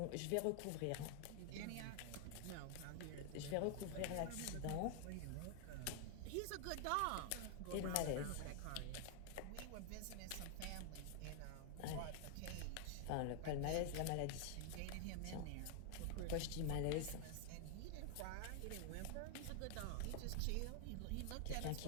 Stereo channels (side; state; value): both; different; correlation 0.00